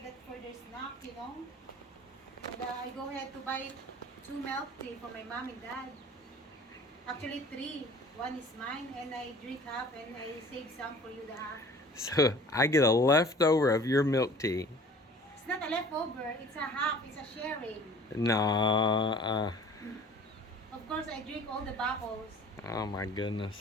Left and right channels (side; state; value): both; normal; correlation 0.47